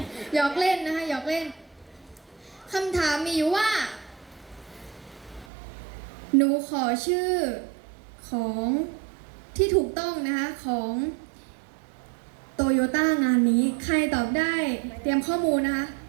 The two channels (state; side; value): drops out; left; at 5.5 s